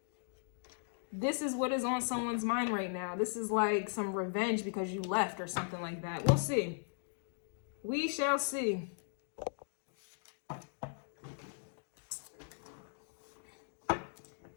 This is what is on someone's mind right now. This is like some revenge because you left or something like that. We'll see. We shall see.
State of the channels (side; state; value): right; silent; digital silence